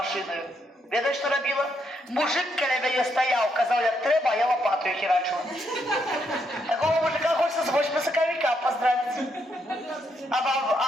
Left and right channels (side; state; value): both; normal; correlation 0.77